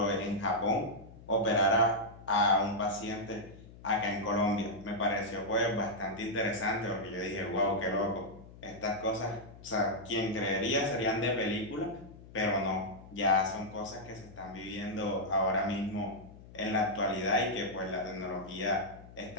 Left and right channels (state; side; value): noise; left; hum, 19 dB below the sound